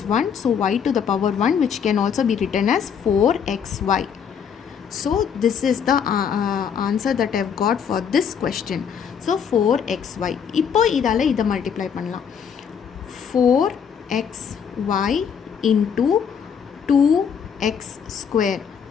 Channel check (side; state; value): right; quieter; 7.3 dB